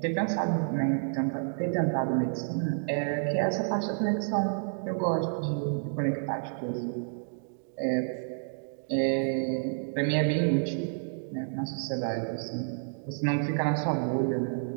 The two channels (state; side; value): silent; left; digital silence